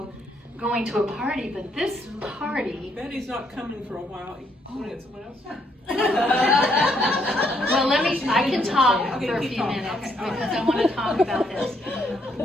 going to a party, but this party, Betty's not coming for a while. You want to get someone else? well, I can talk Okay, for a keep few talking. minutes Okay, all right. because I want to talk about this.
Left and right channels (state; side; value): normal; both; correlation 0.72